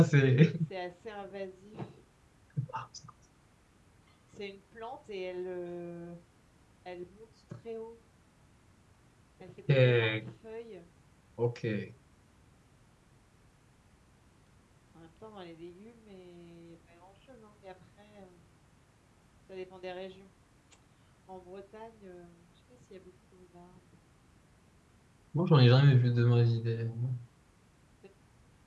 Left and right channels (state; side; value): identical; both; correlation 1.00